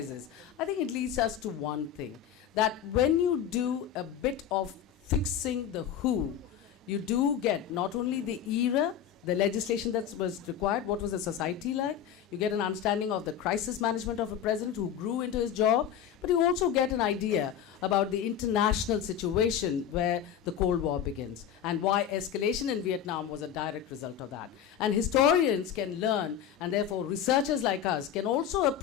I think it leads us to one thing, that when you do a bit of fixing the who, you do get not only the era, the legislation that was required, what was the society like, you get an understanding of the crisis management of a president who grew into his job, but you also get an idea about the international situation where the Cold War begins and why escalation in Vietnam was a direct result of that. And historians can learn, and therefore researchers like us can also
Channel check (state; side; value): quieter; right; 9.2 dB